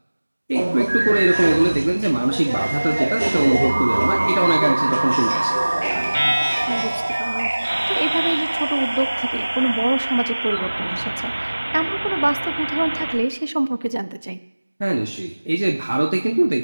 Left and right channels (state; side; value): inverted; both; correlation -1.00